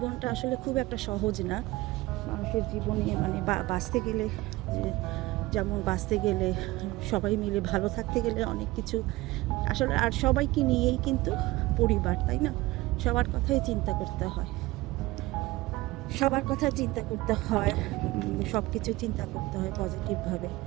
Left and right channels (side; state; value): left; quieter; 19.6 dB